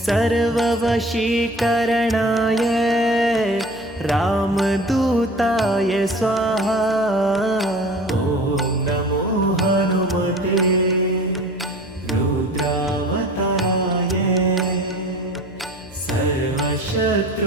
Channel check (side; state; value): left; noise; hum, 21 dB below the sound